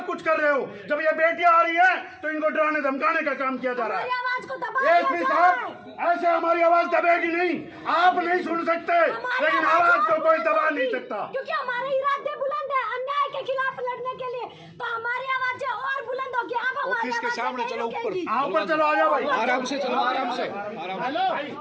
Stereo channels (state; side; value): identical; both; correlation 1.00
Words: कुछ कर रहे हो। जब ये बेटियां आ रही हैं तो इनको डराने धमकाने का काम किया जा रहा है। ASP साहब, ऐसे हमारी आवाज दबेगी नहीं, आप नहीं सुन सकते, लेकिन आवाज को कोई दबा नहीं सकता, क्योंकि हमारे इरादे बुलंद है अन्याय के खिलाफ लड़ने के लिए, तो हमारी आवाज और बुलंद होगी। आप हमारे ऑफिस के सामने चलो, ऊपर ऊपर चलो, आ जाओ भाई, आराम से चलो, आराम से।